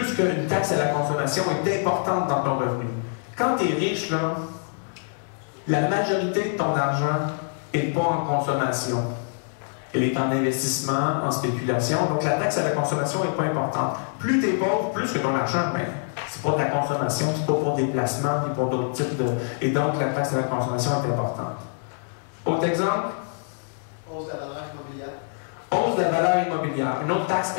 qu'une taxe à la consommation est importante dans ton revenu. Quand tu es riche, là, la majorité de ton argent n'est pas en consommation. Elle est en investissement, en spéculation. Donc la taxe à la consommation n'est pas importante. Plus tu es pauvre, plus que ton argent, ben, c'est pas de la consommation, c'est pas pour des placements, puis pour d'autres types de... Et donc la taxe à la consommation est importante. Autre exemple? Hausse de la valeur immobilière. Hausse de la valeur immobilière. Une autre taxe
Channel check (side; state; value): right; silent; 62 dB below the other